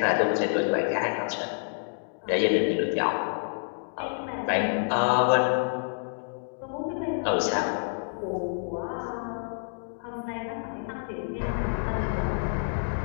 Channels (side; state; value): right; silent; digital silence